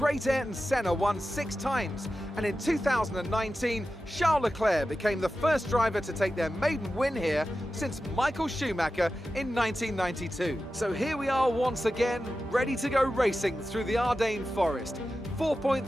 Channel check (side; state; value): both; normal; correlation 0.93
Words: Ayrton Senna won 6 times, and in 2019, Charles Leclerc became the first driver to take their maiden win here since Michael Schumacher in 1992. So here we are once again, ready to go racing through the Ardennes forest.